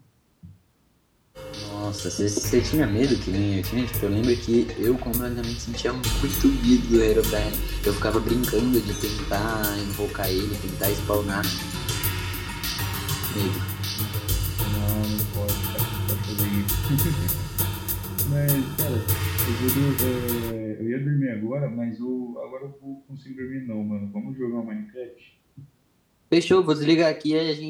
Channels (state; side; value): identical; both; correlation 1.00